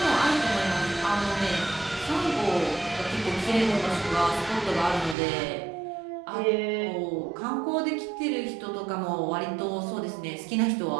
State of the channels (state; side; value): drops out; left; at 5.2 s